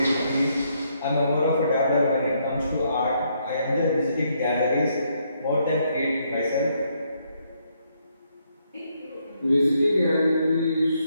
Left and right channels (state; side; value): inverted; both; correlation -0.74